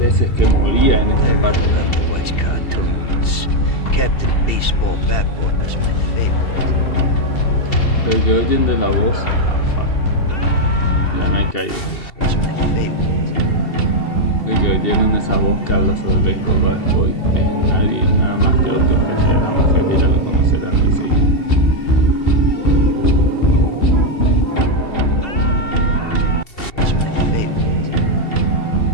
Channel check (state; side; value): late; right; 2.7 ms